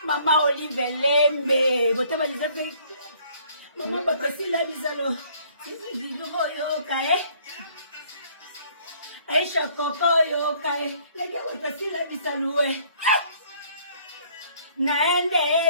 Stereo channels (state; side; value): inverted; both; correlation -0.61